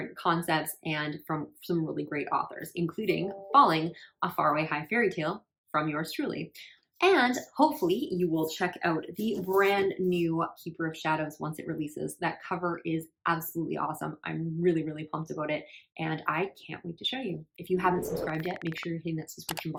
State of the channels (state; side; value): identical; both; correlation 1.00